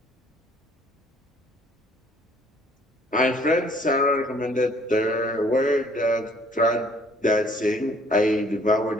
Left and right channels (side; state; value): both; normal; correlation 0.60